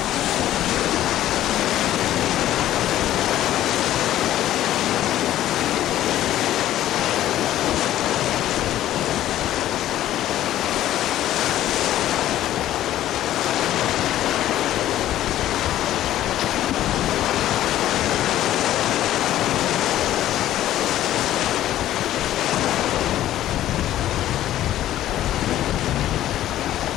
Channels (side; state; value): right; quieter; 13.2 dB